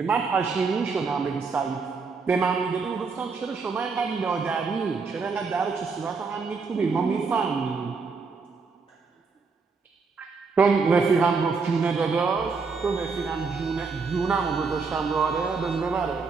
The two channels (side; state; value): left; quieter; 4.8 dB